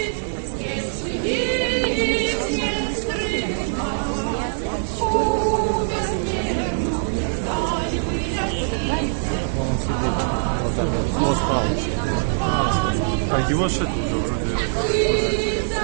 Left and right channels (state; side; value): silent; left; digital silence